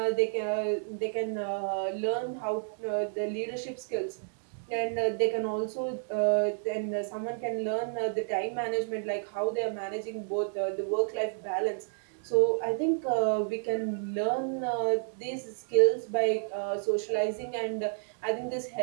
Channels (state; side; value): silent; left; digital silence